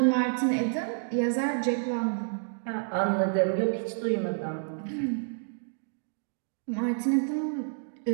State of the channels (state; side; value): silent; left; digital silence